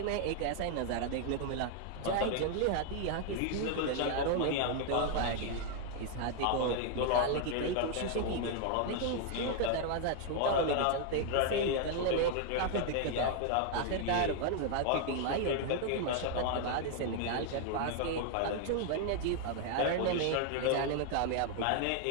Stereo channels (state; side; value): different; both; correlation 0.00